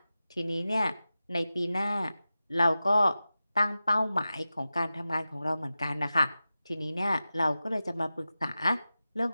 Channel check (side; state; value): both; inverted; correlation -0.94